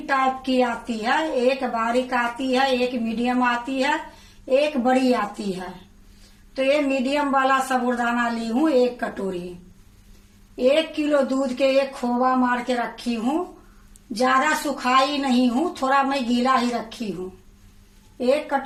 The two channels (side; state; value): both; identical; correlation 1.00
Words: टाइप की आती है, एक बारीक आती है, एक मीडियम आती है, एक बड़ी आती है। तो ये मीडियम वाला साबूदाना ली हूँ 1 कटोरी। 1 किलो दूध के एक खोवा मार के रखी हूँ। ज्यादा सुखाई नहीं हूँ, थोड़ा मैं गीला ही रखी हूँ। 1